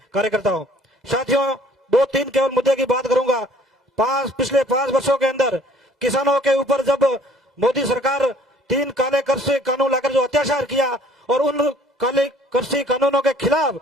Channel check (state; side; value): normal; both; correlation 0.56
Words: कार्यकर्ताओं, साथियों 2-3 केवल मुद्दे की बात करूंगा। पिछले 5 वर्षों के अंदर किसानों के ऊपर जब मोदी सरकार 3 काले कृषि कानून लाकर जो अत्याचार किया और उन काले कृषि कानूनों के खिलाफ